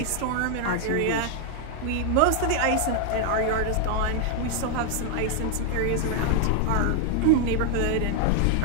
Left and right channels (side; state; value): both; different; correlation 0.00